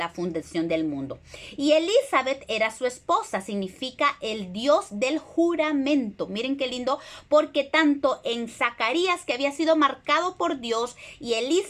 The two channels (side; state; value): both; identical; correlation 1.00